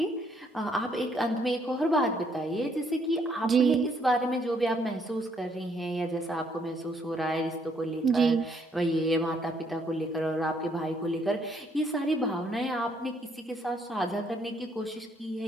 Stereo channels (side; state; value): both; normal; correlation 0.69